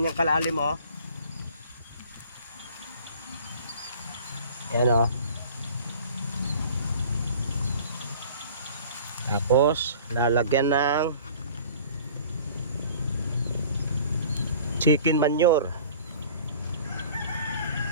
kalalim, oh. Ayan, oh. Tapos lalagyan ng chicken manure.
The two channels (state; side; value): inverted; both; correlation -0.46